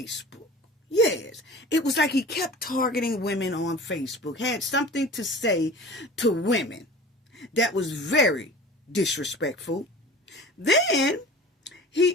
Yes, it was like he kept targeting women on Facebook, had something to say to women that was very disrespectful. Then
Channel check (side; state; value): both; normal; correlation 0.40